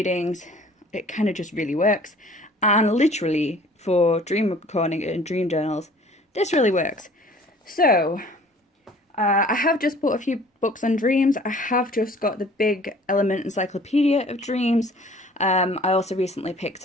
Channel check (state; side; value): normal; both; correlation 0.51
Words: it kind of just really works. And literally for dream recording and dream journals, this really works. So I have just bought a few books on dreams. I have just got the big Element Encyclopedia of Dreams. I also recently